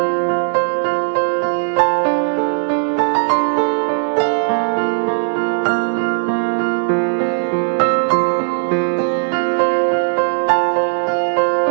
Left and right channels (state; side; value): silent; left; digital silence